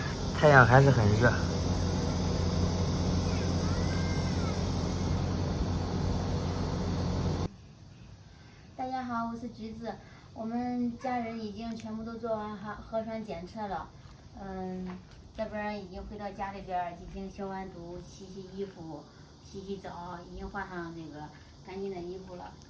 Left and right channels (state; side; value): identical; both; correlation 1.00